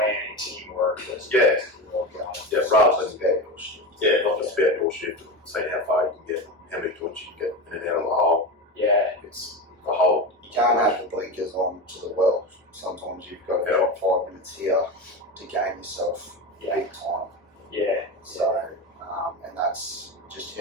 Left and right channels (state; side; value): normal; both; correlation 0.22